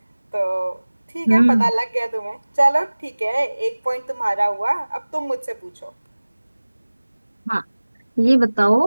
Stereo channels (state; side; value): inverted; both; correlation -1.00